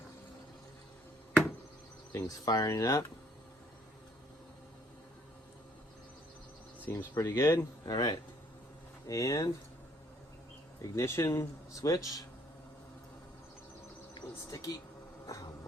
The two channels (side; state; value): both; normal; correlation 0.65